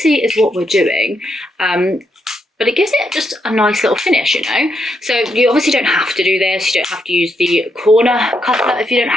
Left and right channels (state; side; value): normal; both; correlation 0.79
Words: is what we're doing. But it gives it just a nice little finish, you know? So you obviously don't have to do this. You don't have to use the corner cutter if you don't